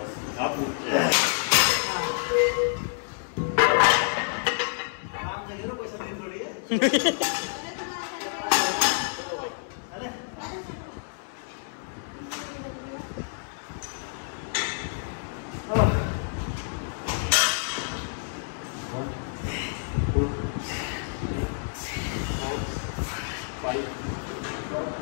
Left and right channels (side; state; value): right; silent; 59 dB below the other